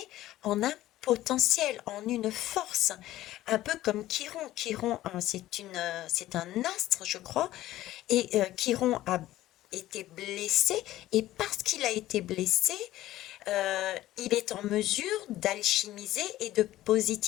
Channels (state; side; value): quieter; right; 15.0 dB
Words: en un potentiel, en une force, un peu comme Chiron. Chiron, hein, c'est un astre, je crois, et Chiron a été blessé et parce qu'il a été blessé, il est en mesure d'alchimiser et de